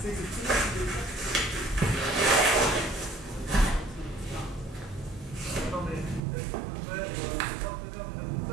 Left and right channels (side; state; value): left; drops out; at 6.2 s